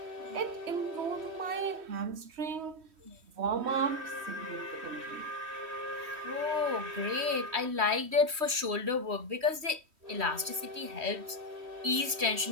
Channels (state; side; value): late; left; 3.1 ms